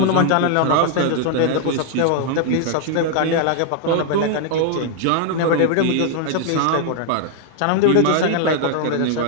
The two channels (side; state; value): both; different; correlation 0.00